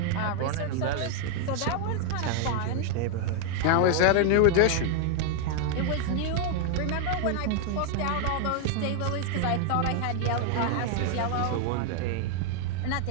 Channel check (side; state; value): both; different; correlation 0.00